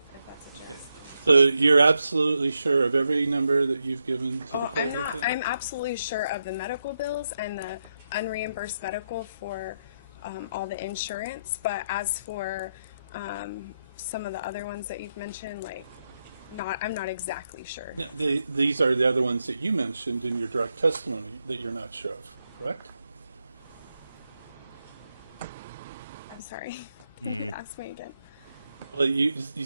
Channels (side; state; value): both; inverted; correlation -0.83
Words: that's what you're asking. So you're absolutely sure of every number that you've given to the Oh, court? I'm not. with it? I'm absolutely sure of the medical bills and the unreimbursed medical for all the insurance. But as for some of the other ones that you've mentioned, like, I'm not exactly sure. No, these are the other ones that you mentioned in your direct testimony that you're not sure of, correct? I'm sorry. Ask me again. Well, you